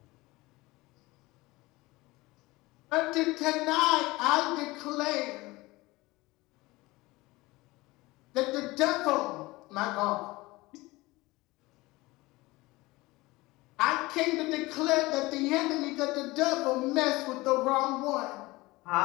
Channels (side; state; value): right; quieter; 21.1 dB